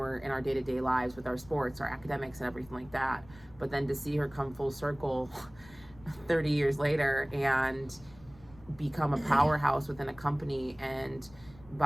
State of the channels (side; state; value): left; noise; rumble, 22 dB below the sound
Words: in our day-to-day lives with our sports, our academics, and everything like that. But then to see her come full circle 30 years later and become a powerhouse within a company and